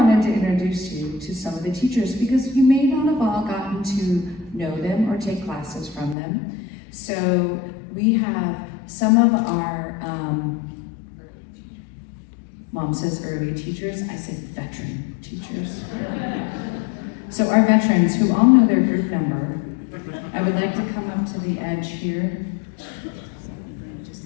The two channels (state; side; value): drops out; right; at 6.2 s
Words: to introduce you to some of the teachers because you may not have all gotten to know them or take classes from them. So we have some of our, Mom says early teachers, I say veteran teachers. So our veterans who all know their group number, I would like to come up to the edge here.